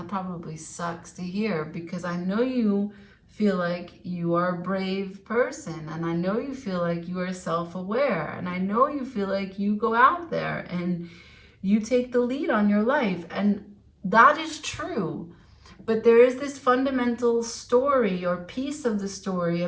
probably sucks to hear, because I know you feel like you are a brave person, and I know you feel like you are self-aware, and I know you feel like you go out there and you take the lead on your life, and that is true. But there is this fundamental story or piece of the story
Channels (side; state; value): both; identical; correlation 1.00